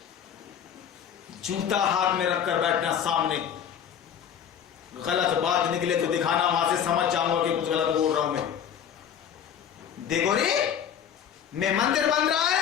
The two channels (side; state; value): right; quieter; 8.6 dB